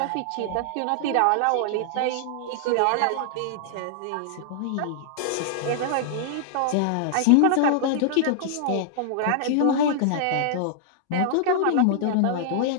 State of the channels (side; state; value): both; different; correlation -0.01